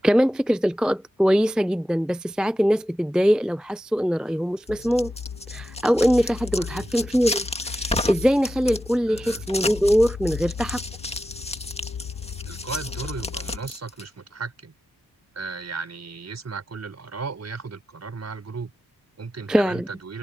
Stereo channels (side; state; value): both; normal; correlation 0.91